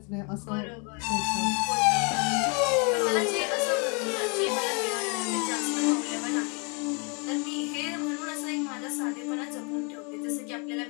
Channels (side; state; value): right; quieter; 34.3 dB